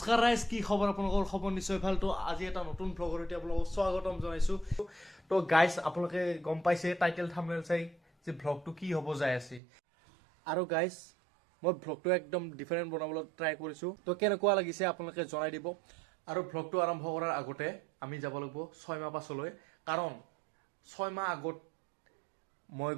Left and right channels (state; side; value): drops out; left; at 9.6 s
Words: ৰাইজ, কি খবৰ আপোনালোকৰ? খবৰ নিশ্চয় ভাল। তো আজি এটা নতুন ভ্লগৰ সৈতে আপোনালোকক স্বাগতম জনাইছোঁ। তো গাইজ, আপোনালোকে গম পাইছে টাইটেল থাম্বনেইল চাই যে ভ্লগটো কি হ'ব যাই আছে। আৰু গাইজ, মই ভ্লগটো একদম ডিফাৰেণ্ট বনাবলৈ ট্ৰাই কৰিছোঁ। তো কেনেকুৱা লাগিছে আপোনালোকে জনাই দিব। আৰু ভ্লগটো আৰম্ভ কৰাৰ আগতে আমি যাব লাগিব 6 মাহ পাছলৈ, কাৰণ 6 মাহ আগত মই